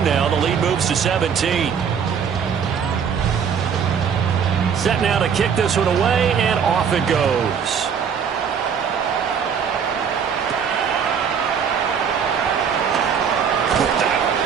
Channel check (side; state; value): left; quieter; 7.1 dB